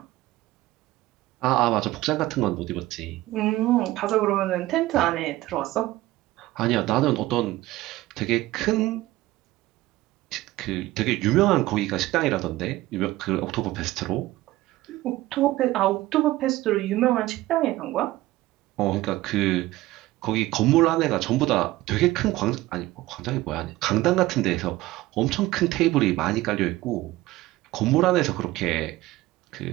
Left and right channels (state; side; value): quieter; left; 17.4 dB